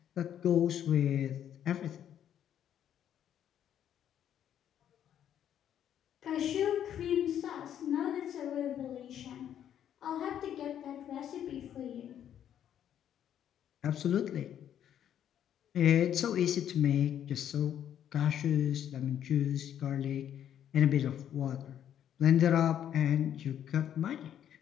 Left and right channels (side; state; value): right; quieter; 10.0 dB